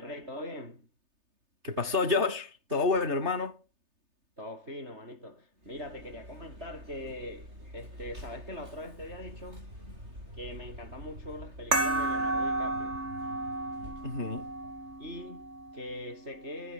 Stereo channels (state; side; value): late; left; 3.3 ms